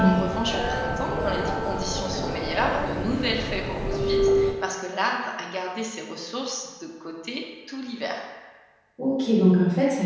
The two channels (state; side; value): identical; both; correlation 1.00